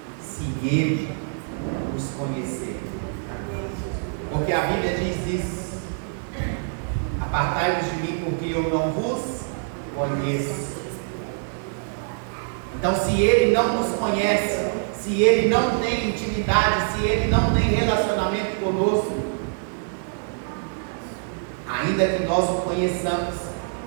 se Ele nos conhecer, porque a Bíblia diz isso: apartai-vos de mim, porque eu não vos conheço. Então, se Ele não nos conhece, se Ele não tem intimidade, se Ele não tem relacionamento conosco, ainda que nós o conheçamos,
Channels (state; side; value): silent; left; digital silence